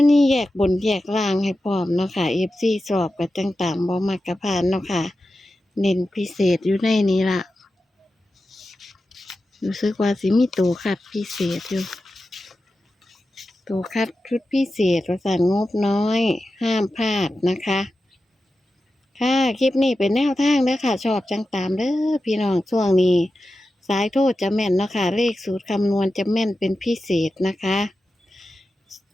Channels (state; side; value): normal; both; correlation 0.92